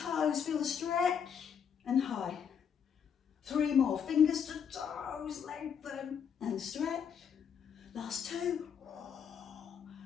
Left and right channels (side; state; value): right; quieter; 7.5 dB